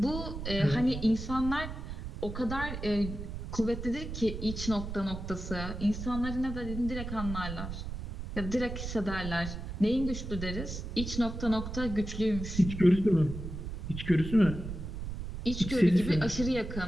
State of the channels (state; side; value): noise; right; rumble, 7 dB below the sound